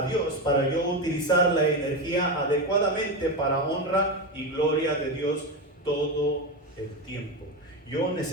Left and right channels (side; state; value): both; normal; correlation 0.16